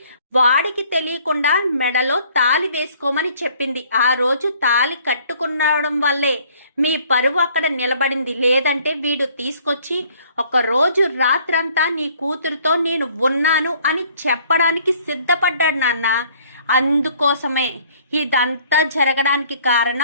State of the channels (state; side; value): inverted; both; correlation -0.58